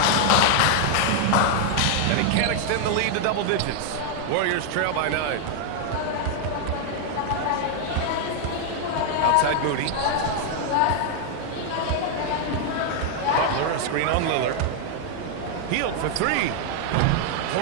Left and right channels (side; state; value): both; different; correlation 0.00